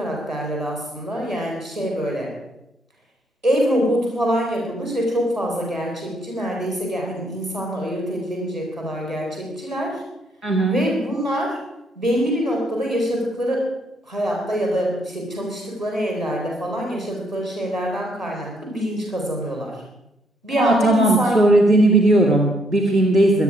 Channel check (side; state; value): both; normal; correlation 0.71